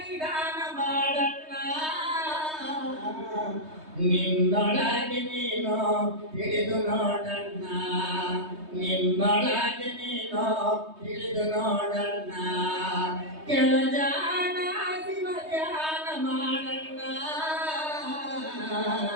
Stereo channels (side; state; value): left; late; 3.2 ms